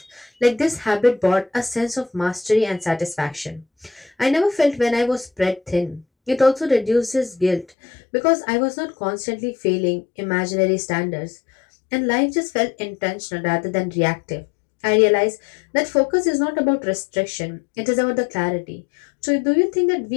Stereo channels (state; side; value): drops out; right; at 7.7 s